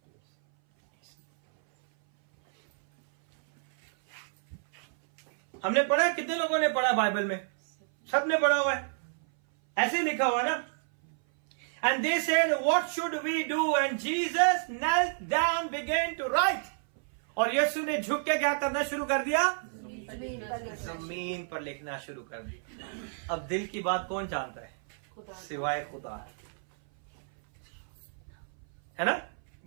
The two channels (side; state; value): left; silent; 58 dB below the other